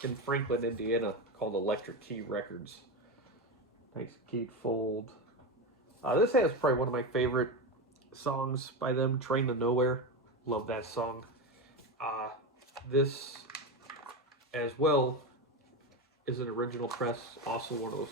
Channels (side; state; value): both; normal; correlation 0.17